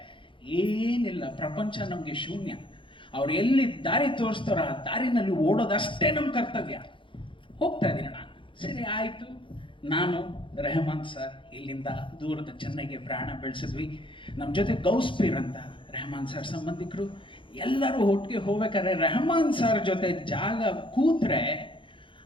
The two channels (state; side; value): late; right; 0.25 ms